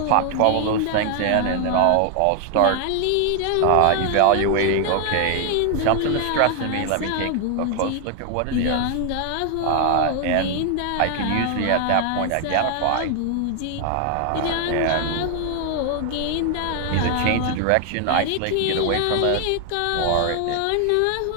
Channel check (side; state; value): both; different; correlation 0.00